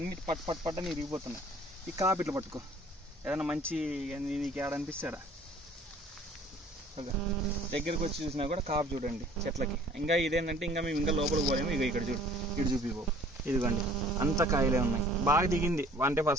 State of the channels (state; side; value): normal; both; correlation 0.53